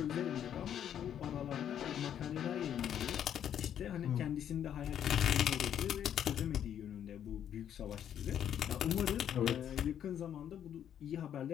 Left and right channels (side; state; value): right; quieter; 9.6 dB